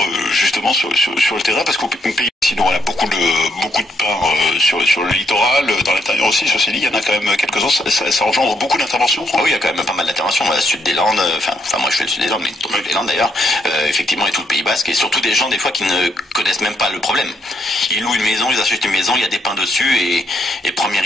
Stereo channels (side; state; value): both; normal; correlation 0.74